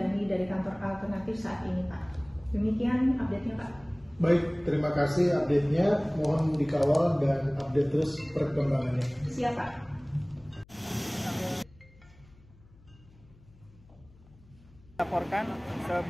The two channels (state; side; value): noise; left; hum, 26 dB below the sound